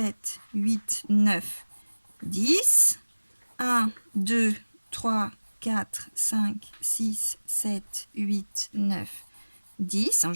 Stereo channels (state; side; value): inverted; both; correlation -1.00